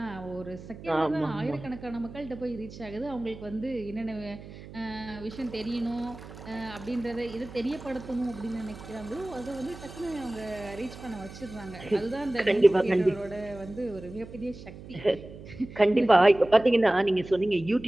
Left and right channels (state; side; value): noise; right; hum, 15 dB below the sound